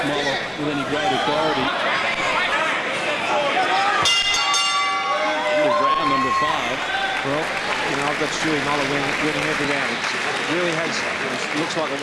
Mollar with any great authority. Into round number 5. Well, you know, I've got Stewart Mollar winning every round. It really has, it looks like a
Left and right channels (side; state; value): both; identical; correlation 1.00